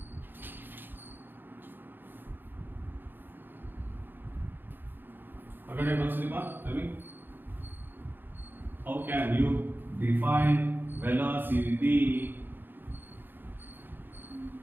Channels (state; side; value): late; left; 0.095 ms